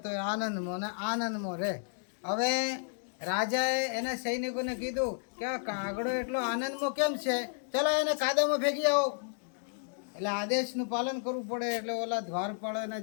તોય આનંદમાં ને આનંદમાં રહે. હવે રાજાએ એના સૈનિકોને કીધું કે આ કાગડો એટલો આનંદમાં કેમ છે, ચલો એને કાદવમાં ફેંકી આવો. એટલે આદેશનું પાલન કરવું પડે. એટલે ઓલા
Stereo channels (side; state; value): right; silent; digital silence